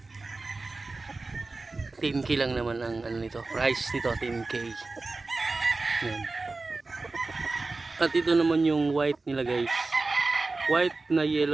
10k lang naman ang ano nito, price nito 10k. Yan. At ito naman yung white nila guys, white na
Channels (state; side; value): quieter; left; 3.6 dB